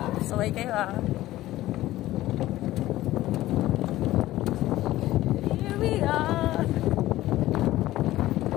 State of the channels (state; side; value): quieter; right; 15.7 dB